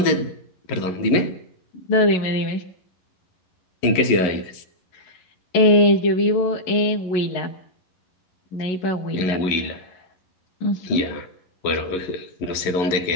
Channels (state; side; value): late; right; 11 ms